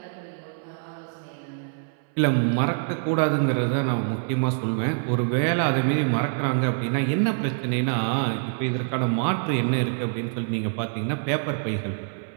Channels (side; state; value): left; silent; 61 dB below the other